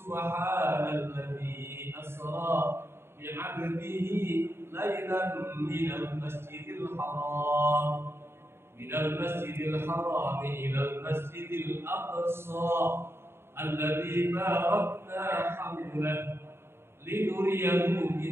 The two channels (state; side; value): late; left; 0.12 ms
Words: asra bi'abdihi lailan minal masjidil haram ilal masjidil aqsa alladzi barakna hawlahu linuriyahu